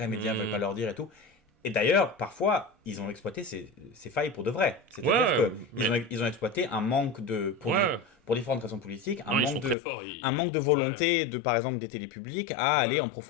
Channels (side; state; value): right; drops out; at 9.8 s